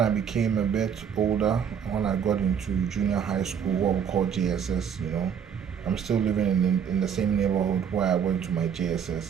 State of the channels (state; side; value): quieter; left; 7.7 dB